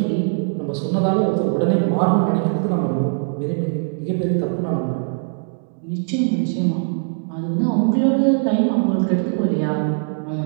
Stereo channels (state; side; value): silent; left; 65 dB below the other